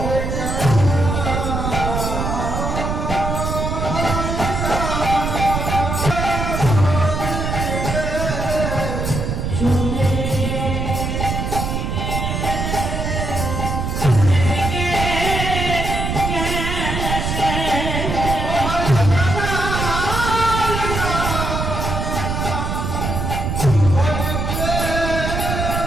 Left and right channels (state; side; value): noise; right; rumble, 2 dB below the sound